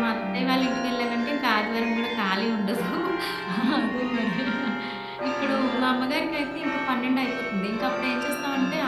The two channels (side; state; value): both; identical; correlation 1.00